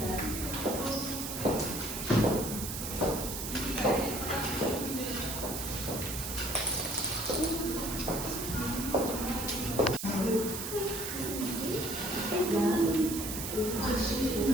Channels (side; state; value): right; noise; hiss, 5 dB below the sound